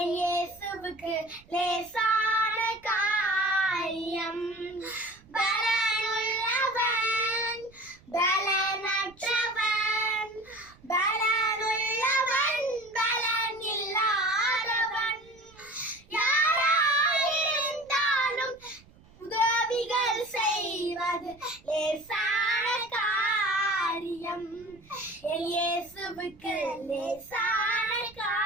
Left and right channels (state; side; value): noise; right; rumble, 26 dB below the sound